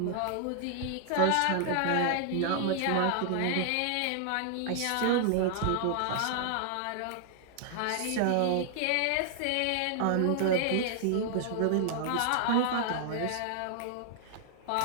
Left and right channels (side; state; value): both; different; correlation 0.00